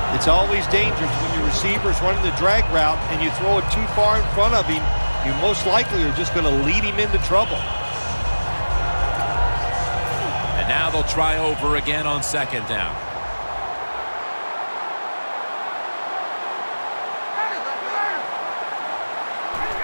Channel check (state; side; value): inverted; both; correlation -1.00